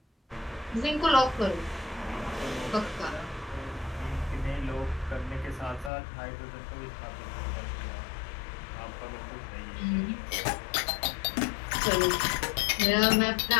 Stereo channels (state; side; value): drops out; right; at 5.9 s